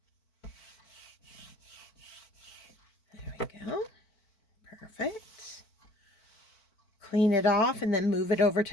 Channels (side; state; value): right; late; 4.5 ms